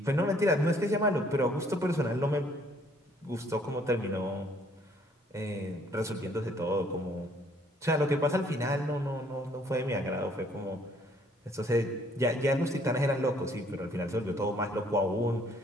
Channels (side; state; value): both; normal; correlation 0.62